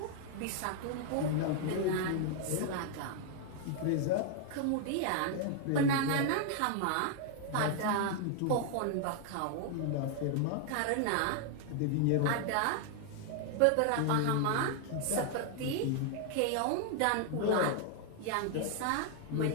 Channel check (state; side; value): different; both; correlation 0.00